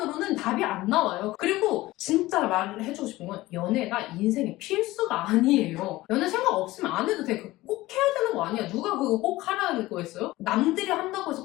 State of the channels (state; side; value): quieter; right; 18.2 dB